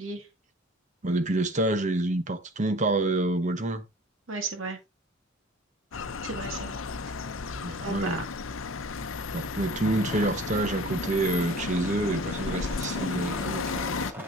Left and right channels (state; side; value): normal; both; correlation 0.45